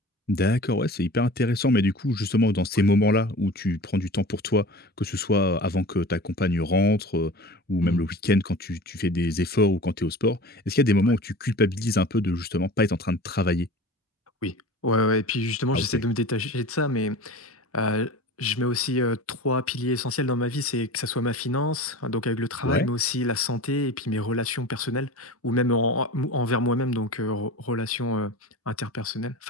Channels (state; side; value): normal; both; correlation 0.36